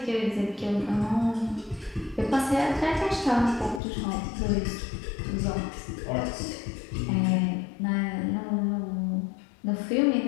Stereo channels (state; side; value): drops out; right; at 3.8 s